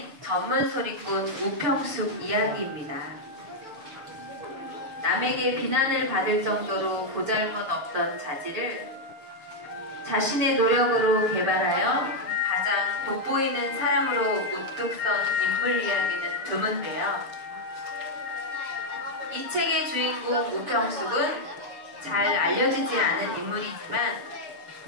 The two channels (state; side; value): late; left; 7.1 ms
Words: 전문 소리꾼 우평숙 이야기입니다. 남에게 비난을 받을 정도로 보잘것없던 자질을 자신의 노력으로 개발하여 가장 돋보이는 사람으로 우뚝 선 인물 이야기는 드문데요. 이 책의 주인공 우평숙은 잘 알려지지 않은 인물이지만